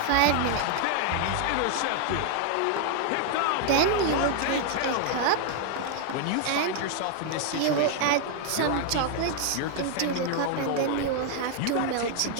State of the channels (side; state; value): both; different; correlation 0.00